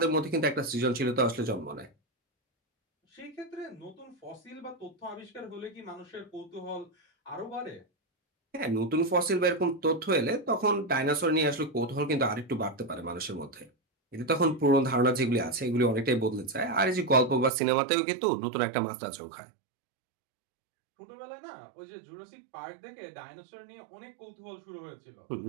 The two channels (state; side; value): drops out; left; at 17.5 s